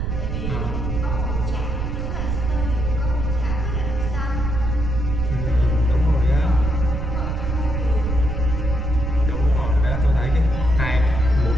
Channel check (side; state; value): right; noise; rumble, 2 dB below the sound